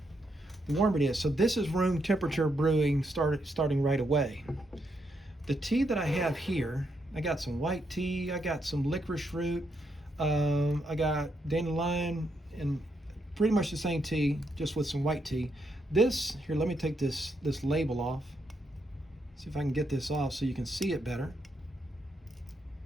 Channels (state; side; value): normal; both; correlation 0.79